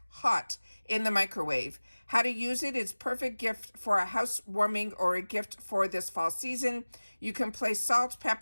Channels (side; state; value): both; inverted; correlation -1.00